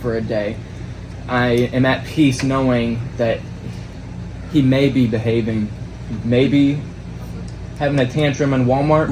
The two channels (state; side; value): identical; both; correlation 1.00